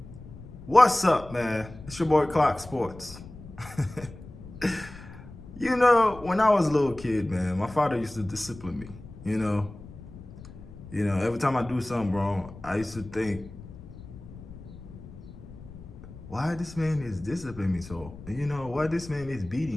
What's up, man? It's your boy Clock Sports. When I was a little kid, man, my father used to discipline me. Every time I do something wrong, I used to think, why this man is disciplining me so? Why this man is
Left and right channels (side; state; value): left; noise; rumble, 16 dB below the sound